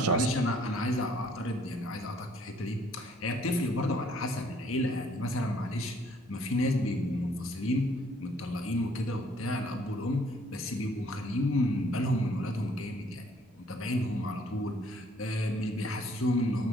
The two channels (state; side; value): normal; both; correlation 0.62